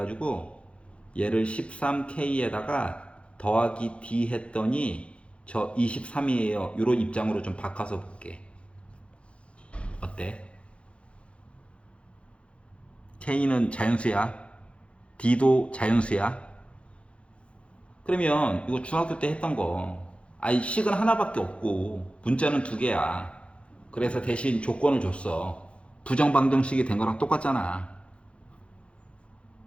얘를 13K에다가 더하기 D 했더니 저 23이에요. 이런 입장으로 좀 바꿔서 볼게. 어때? K는 자연수야. D도 자연수야. 그러면 이거 중학교 때 했던 거. 아이 식은 하나밖에 없고 문자는 두 개야. 그래서 대신 조건을 줬어. 부정방정식이 된 거랑 똑같잖아.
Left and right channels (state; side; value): late; right; 0.060 ms